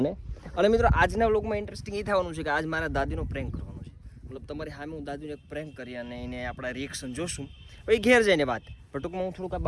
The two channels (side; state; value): both; identical; correlation 1.00